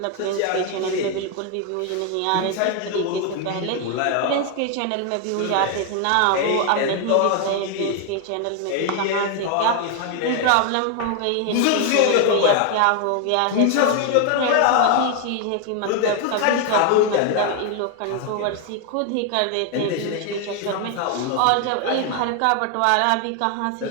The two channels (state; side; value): different; both; correlation 0.01